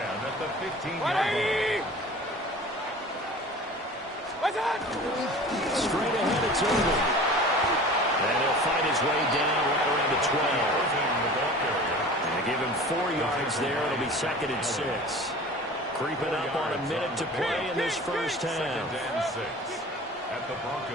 at the 15-yard line. What's up? Straight ahead, it's Urban. And he'll fight his way down right around the 12. And they give him 4 yards there. It'll be 2nd and 6. Creeping up on a minute to play in this first half. 2nd and 6 at the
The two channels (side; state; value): both; normal; correlation 0.40